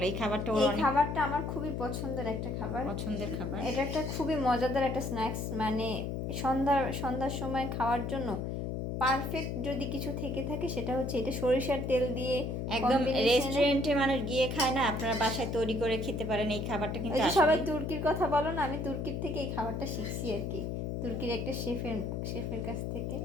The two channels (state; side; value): noise; left; hum, 3 dB below the sound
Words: এই খাবারটা ওর অনেক খাবারটা আমার খুবই পছন্দের একটা খাবার, পছন্দের খাবার। এটা একটা খুবই মজাদার একটা স্ন্যাক্স, মানে সন্ধ্যার সময় খাওয়ার জন্য পারফেক্ট যদি কিছু থেকে থাকে সেটা হচ্ছে এটা, সরিষার তেল দিয়ে একদম রেস্টুরেন্টে মানুষ গিয়ে খায় না, আপনারা বাসায় তৈরি করে খেতে পারেন এই খাবারটা কিন্তু সবাই তুর্কির কথা বলো না, আমি তুর্কির থেকে এই খাবারটা শিখছি আর কি, তুর্কির একটা শেফের কাছ থেকে।